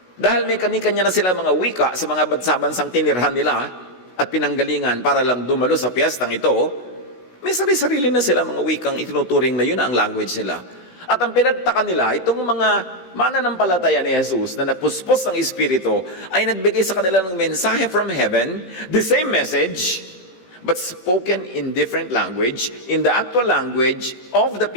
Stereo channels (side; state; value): right; late; 16 ms